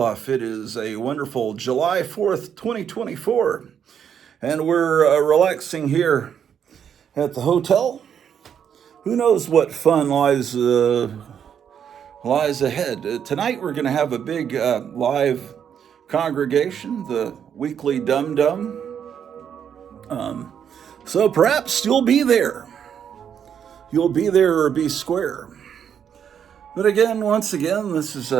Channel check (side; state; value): left; quieter; 8.3 dB